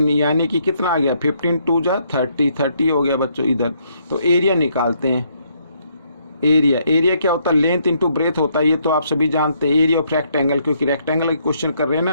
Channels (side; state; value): both; inverted; correlation -0.71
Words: यानी कि कितना आ गया 15 2 जा 30, 30 हो गया बच्चों इधर। तो एरिया निकालते हैं। एरिया क्या होता है लेंथ इंटू ब्रेथ होता है, ये तो आप सभी जानते हैं। एरिया ऑफ रेक्टेंगल, क्योंकि रेक्टेंगल का क्वेश्चन कर रहे हैं